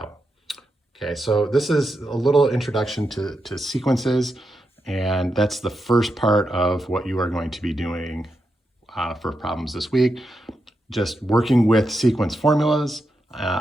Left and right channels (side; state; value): both; normal; correlation 0.86